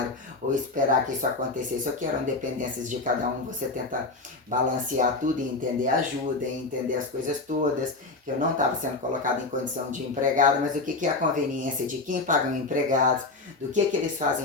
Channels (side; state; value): right; quieter; 3.4 dB